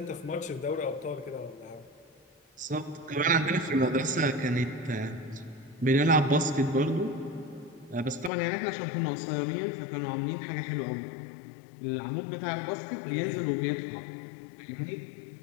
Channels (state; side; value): drops out; right; at 8.3 s